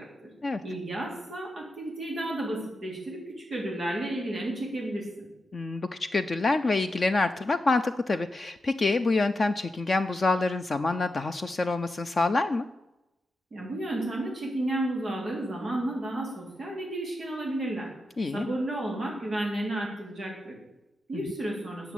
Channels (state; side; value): normal; both; correlation 0.88